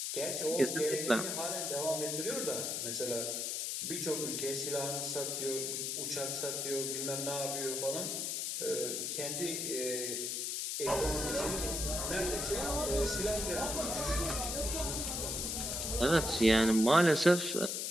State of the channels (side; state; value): left; noise; hiss, 1 dB below the sound